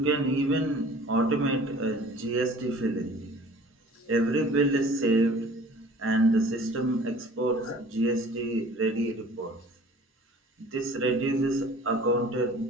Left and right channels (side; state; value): both; normal; correlation 0.48